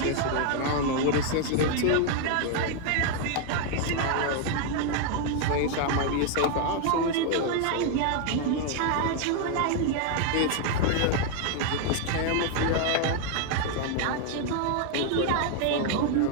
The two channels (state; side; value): different; both; correlation 0.00